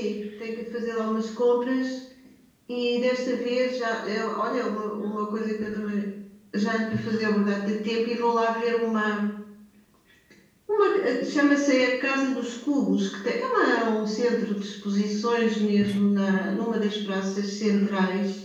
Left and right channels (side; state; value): both; identical; correlation 1.00